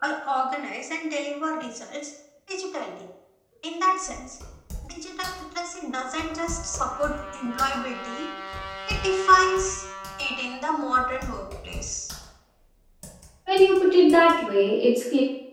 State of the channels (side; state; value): both; identical; correlation 1.00